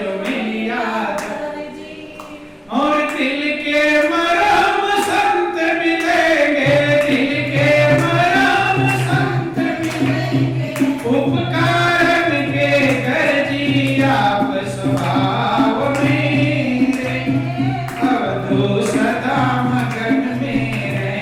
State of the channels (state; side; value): identical; both; correlation 1.00